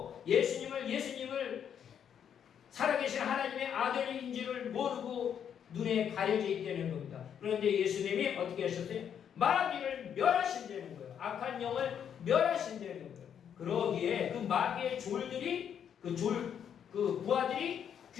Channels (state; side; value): quieter; right; 8.5 dB